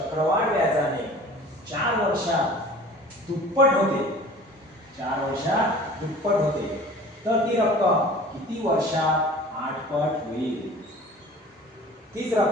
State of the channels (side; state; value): both; normal; correlation 0.44